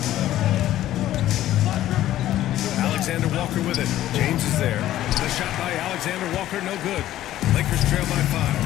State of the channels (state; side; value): quieter; right; 13.5 dB